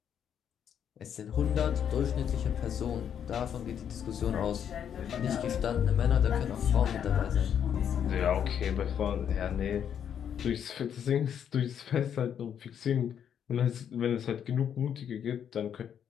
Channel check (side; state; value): right; quieter; 8.7 dB